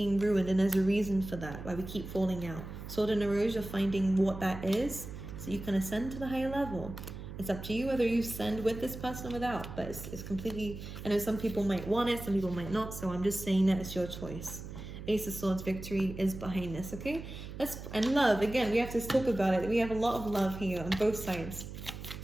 ruined, and there's a reason for that, why we keep falling out. Sword in the Rose, you're finding what that is, so you can ascend to the higher level. It's up to you whether you ascend with this person or without, but it's completely, I know some people might want it, some people might not, so I'm just saying that it's your choice. Ace of Swords, victory is behind this, okay? And love, again, we have to talk about it. We have a lot of love here on both sides,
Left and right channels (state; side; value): noise; right; hum, 10 dB below the sound